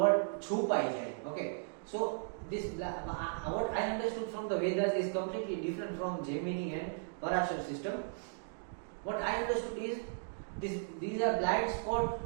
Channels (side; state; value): left; silent; digital silence